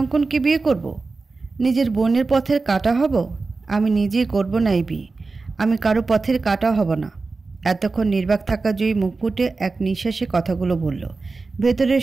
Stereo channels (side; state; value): left; quieter; 3.9 dB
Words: বিয়ে করব? নিজের বোনের পথের কাঁটা হব? আমি নিজেই করব না এই বিয়ে। আমি কারো পথের কাঁটা হব না। এতক্ষণ নির্বাক থাকা জয়ী মুখ ফুটে এক নিঃশ্বাসে কথাগুলো বলল।